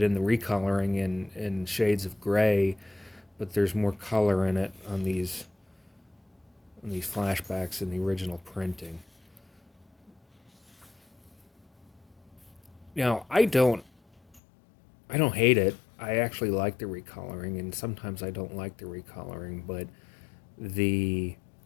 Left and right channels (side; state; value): right; drops out; at 14.4 s